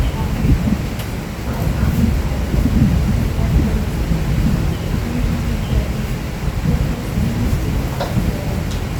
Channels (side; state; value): both; identical; correlation 1.00